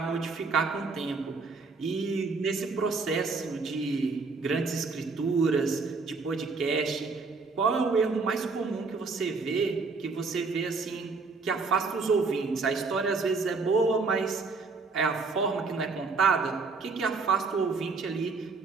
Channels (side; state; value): left; quieter; 4.3 dB